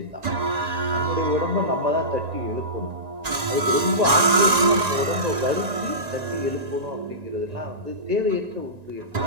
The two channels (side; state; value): left; late; 1.9 ms